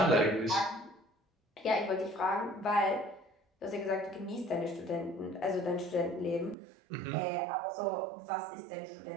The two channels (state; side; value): drops out; left; at 6.6 s